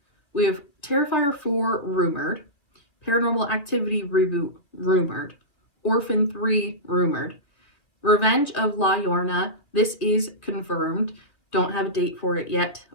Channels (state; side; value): late; right; 2.4 ms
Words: We have Terrifier 4 rumored, Paranormal Activity reboot rumored, Orphan 3 rumored, Revenge of La Llorona. This is confirmed. Don't have a date for it yet,